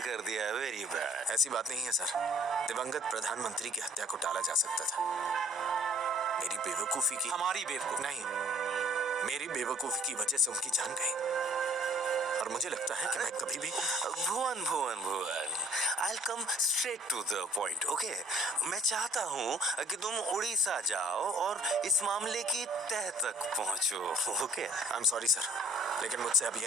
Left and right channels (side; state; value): both; normal; correlation 0.55